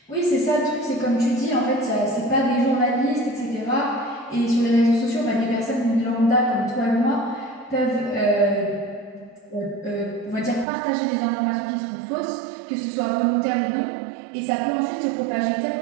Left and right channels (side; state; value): left; drops out; at 10.7 s